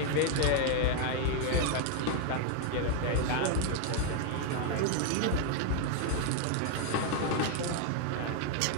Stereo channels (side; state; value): both; different; correlation 0.00